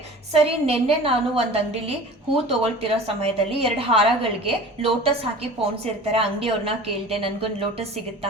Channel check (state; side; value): normal; both; correlation 0.40